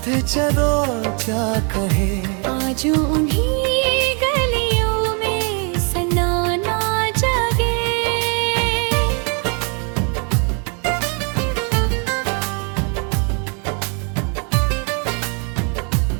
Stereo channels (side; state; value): left; quieter; 36.9 dB